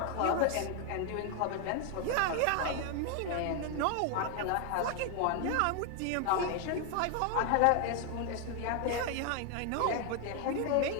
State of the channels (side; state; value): both; different; correlation 0.00